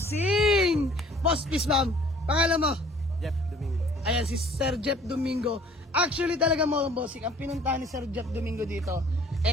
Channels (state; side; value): normal; both; correlation 0.54